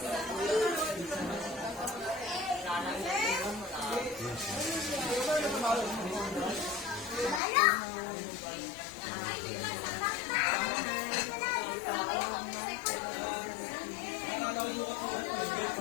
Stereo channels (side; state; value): right; drops out; at 7.4 s